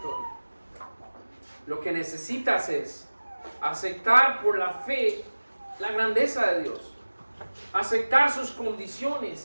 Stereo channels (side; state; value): both; inverted; correlation -1.00